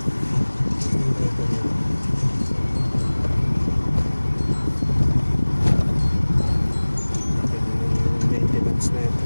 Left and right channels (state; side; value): inverted; both; correlation -1.00